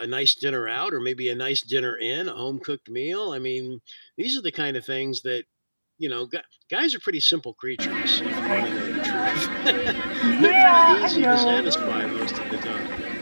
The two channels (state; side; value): inverted; both; correlation -1.00